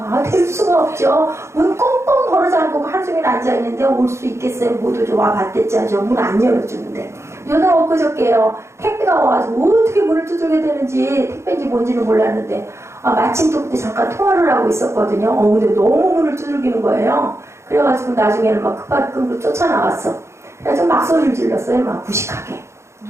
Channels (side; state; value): left; late; 0.13 ms